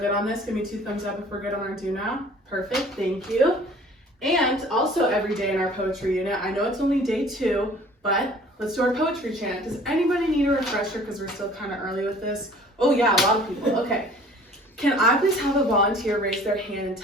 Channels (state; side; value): normal; both; correlation 0.50